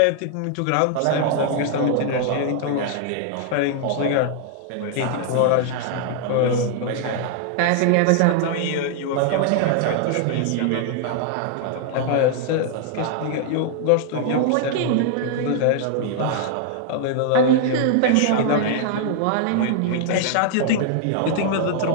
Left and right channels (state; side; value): different; both; correlation 0.00